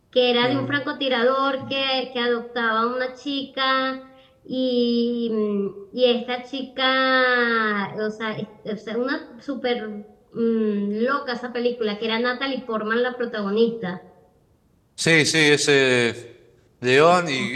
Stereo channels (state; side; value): identical; both; correlation 1.00